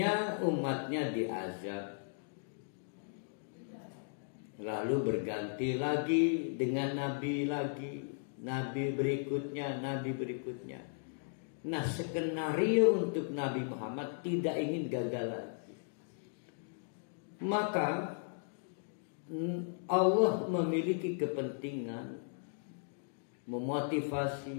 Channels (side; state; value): right; silent; digital silence